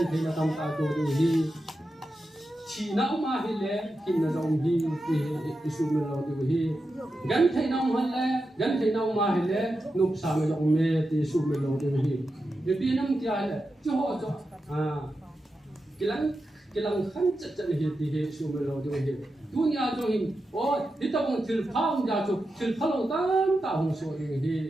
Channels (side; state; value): both; normal; correlation 0.89